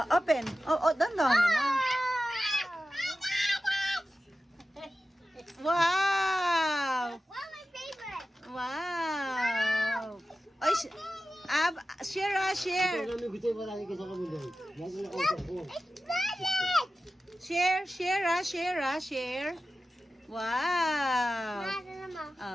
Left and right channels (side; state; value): both; normal; correlation 0.94